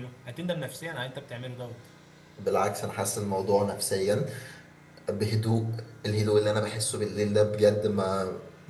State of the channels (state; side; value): identical; both; correlation 1.00